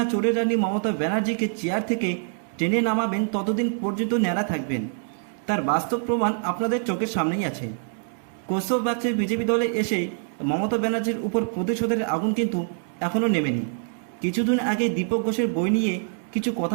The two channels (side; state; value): left; silent; 62 dB below the other